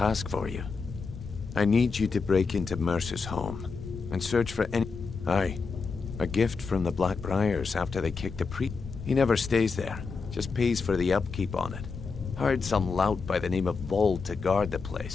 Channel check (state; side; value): quieter; right; 4.8 dB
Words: for you. I need you to break into Mercer's home and search for any... Aye, a gift from the Blackbriars after they kicked the priest. He never stays there, just pays for the upkeep on it. Hired some lout by the name of Vold to guard the